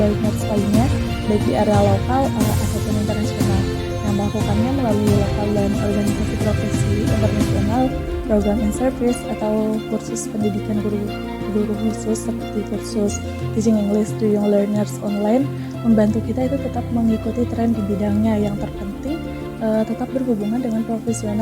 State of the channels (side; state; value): both; identical; correlation 1.00